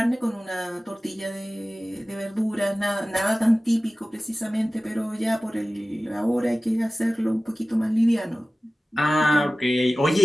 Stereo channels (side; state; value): both; normal; correlation 0.96